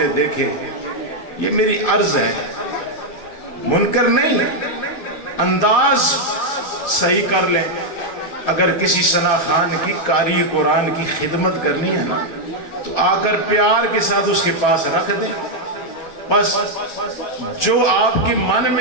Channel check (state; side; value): late; right; 12 ms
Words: دیکھے، یہ میری عرض ہے، منکر نہیں، انداز صحیح کر لیں۔ اگر کسی ثنا خان کی قاری قرآن کی خدمت کرنی ہے نا تو آ کر پیار کے ساتھ اس کے پاس رکھ دیں، بس جو آپ کے من